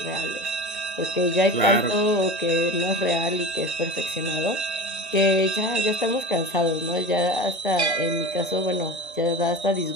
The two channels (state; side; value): normal; both; correlation 0.30